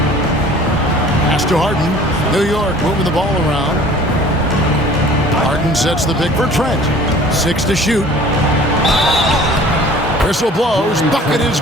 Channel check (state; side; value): normal; both; correlation 0.48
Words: Pass to Harden. New York moving the ball around. Harden sets the pick for Trent. 6 to shoot. Whistle blows. Bucket is